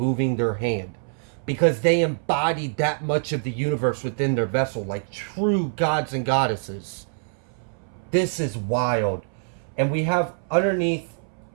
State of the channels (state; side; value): silent; left; 60 dB below the other